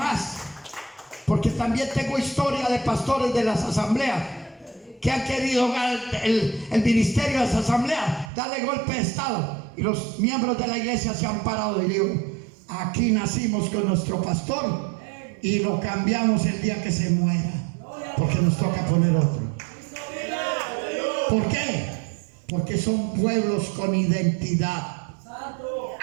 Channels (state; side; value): drops out; left; at 8.3 s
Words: porque también tengo historia de pastores de las asambleas que han querido el ministerio de las asambleas darle golpe de estado, y los miembros de la iglesia se han parado y digo, aquí nacimos con nuestro pastor y lo cambiamos el día que se muera, porque nos toca poner otro. ¿Por qué? Porque son pueblos con identidad.